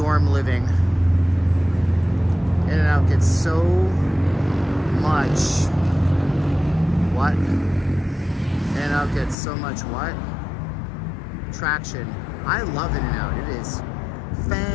living. In-N-Out gets so much what? In-N-Out gets so much what? Traction. I love In-N-Out. It is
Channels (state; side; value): drops out; right; at 9.3 s